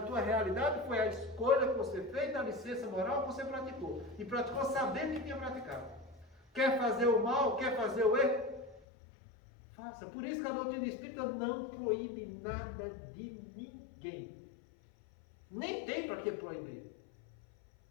tua realidade foi a escolha que você fez, a licença moral que você praticou. E praticou sabendo que tinha praticado. Quer fazer o mal, quer fazer o erro? Faça. Por isso que a doutrina espírita não proíbe nada de ninguém. Nem tem para que proibir.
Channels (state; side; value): drops out; right; at 8.8 s